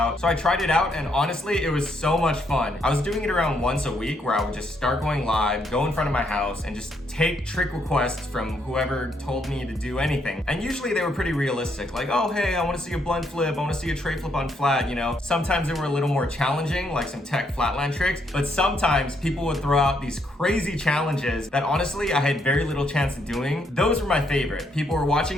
So I tried it out and honestly, it was so much fun. I was doing it around once a week where I would just start going live, go in front of my house and just take trick requests from whoever told me to do anything. And usually they were pretty realistic, like, oh, hey, I wanna see a blunt flip, I wanna see a tray flip on flat, you know? Sometimes they were a little more challenging, like some tech flatland tricks, but sometimes people would throw out these crazy challenges that honestly I had very little chance of doing. Those were my favorite. People were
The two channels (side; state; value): both; normal; correlation 0.74